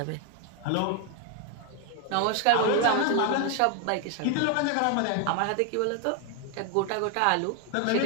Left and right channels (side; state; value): both; different; correlation 0.01